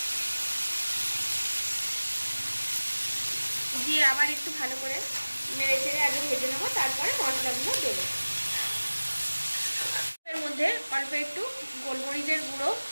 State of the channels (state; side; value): inverted; both; correlation -1.00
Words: দিয়ে আবার একটু ভালো করে নেড়ে চেড়ে আগে ভেজে নেবো, তারপরে মশলাগুলো দেবো। এর মধ্যে অল্প একটু গোলমরিচের গুঁড়ো